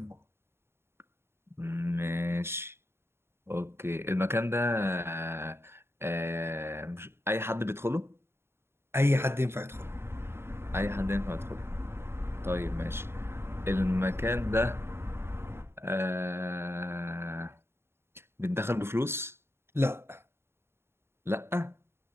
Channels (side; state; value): left; late; 0.12 ms